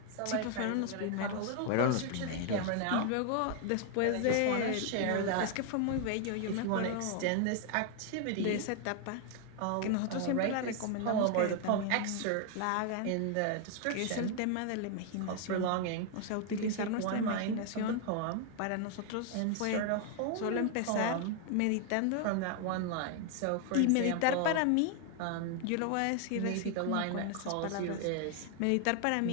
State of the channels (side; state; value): both; different; correlation 0.00